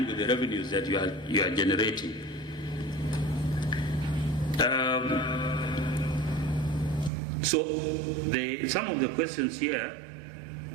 with the revenues that you are generating. So some of the questions here,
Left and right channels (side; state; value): left; drops out; at 7.1 s